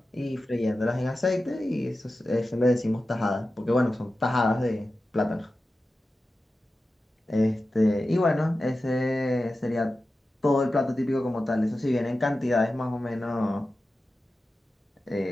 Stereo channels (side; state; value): both; normal; correlation 0.93